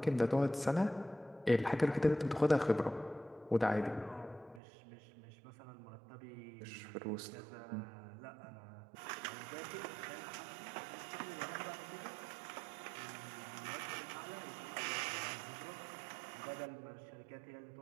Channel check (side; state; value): left; drops out; at 4.6 s